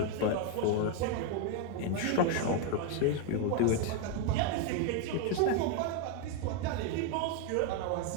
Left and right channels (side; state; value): both; different; correlation 0.01